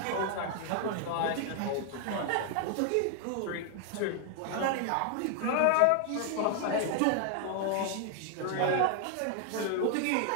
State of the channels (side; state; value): both; different; correlation 0.00